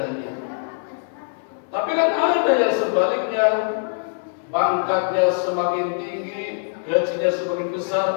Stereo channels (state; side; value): silent; right; 64 dB below the other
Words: Tapi kan ada yang sebaliknya, pangkatnya semakin tinggi, gajinya semakin